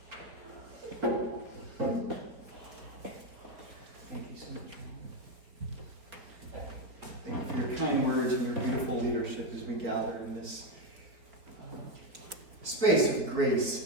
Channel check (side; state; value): left; late; 4.3 ms